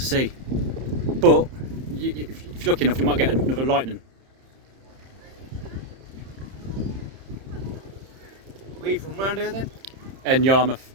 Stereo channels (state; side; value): late; left; 30 ms